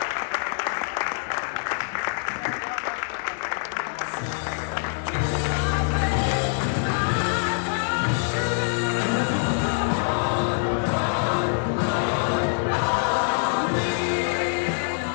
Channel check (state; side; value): silent; right; 62 dB below the other